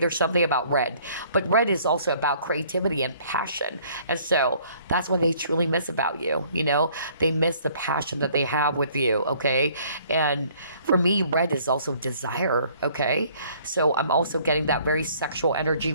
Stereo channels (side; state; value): both; inverted; correlation -0.59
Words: something about red. But red is also about creativity and passion. And so that's what they truly miss about you, They miss the passion that they have with you, okay? And for me, red is also desire, okay? So I'm also getting that very sexual energy,